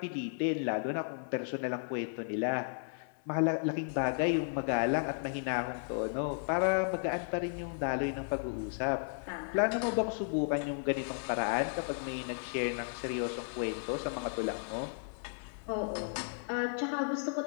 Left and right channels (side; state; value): right; silent; 55 dB below the other